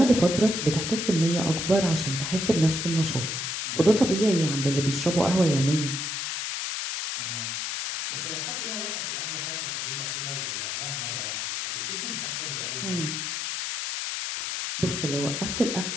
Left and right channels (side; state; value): left; noise; hiss, 3 dB below the sound